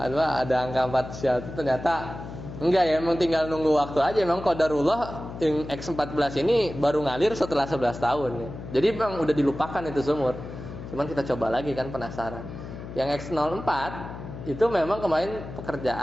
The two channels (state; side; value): noise; left; hum, 11 dB below the sound